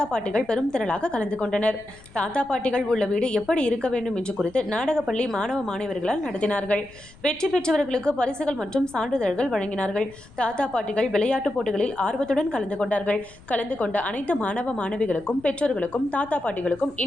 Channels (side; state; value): left; noise; rumble, 23 dB below the sound